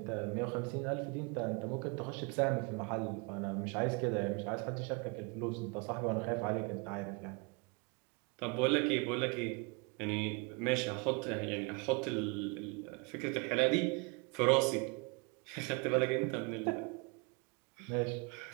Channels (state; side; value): quieter; left; 31.1 dB